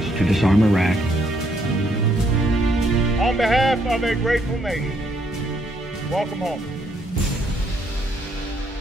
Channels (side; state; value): both; normal; correlation 0.72